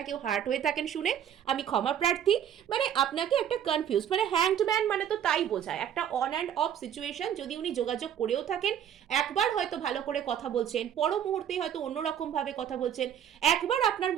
কেউ হার্ট হয়ে থাকেন শুনে, আমি ক্ষমা প্রার্থী। মানে আপনাকে একটা কনফিউজ, মানে হ্যাংড ম্যান মানে তো তাই বোঝায়, একটা অন অ্যান্ড অফ সিচুয়েশন। যদি উনি যোগাযোগ করেও থাকেন, একবার হয়তো ভালো করে কথা বলছেন, পর মুহূর্তেই হয়তো অন্যরকম ভাবে কথা বলছেন। একবার আপনার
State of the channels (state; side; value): quieter; left; 9.5 dB